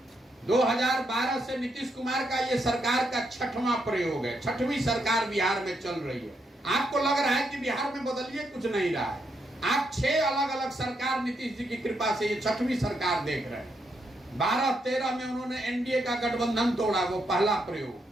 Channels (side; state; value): both; normal; correlation 0.79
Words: 2012 से नीतीश कुमार का ये सरकार का 6वां प्रयोग है, 6वीं सरकार बिहार में चल रही है। आपको लग रहा है कि बिहार में बदलिए कुछ नहीं रहा है। आप 6 अलग अलग सरकार नीतीश जी की कृपा से ये 6वीं सरकार देख रहे हैं। 12-13 में उन्होंने एनडीए का गठबंधन तोड़ा, वो पहला प्रयोग।